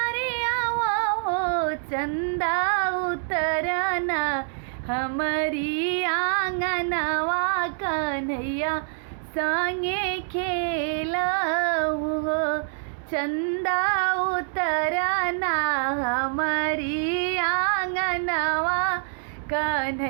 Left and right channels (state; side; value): silent; left; digital silence